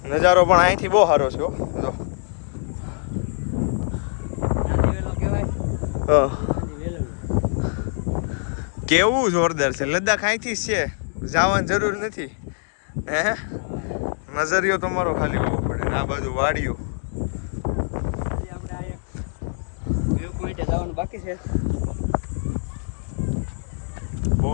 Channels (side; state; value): right; silent; 63 dB below the other